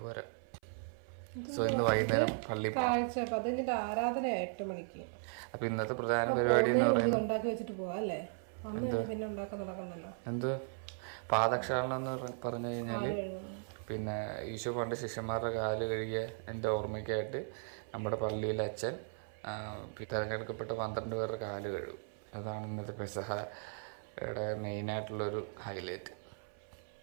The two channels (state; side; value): silent; left; 53 dB below the other